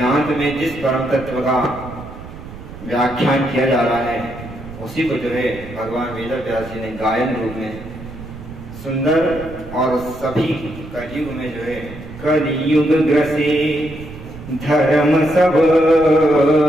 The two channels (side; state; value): right; noise; rumble, 14 dB below the sound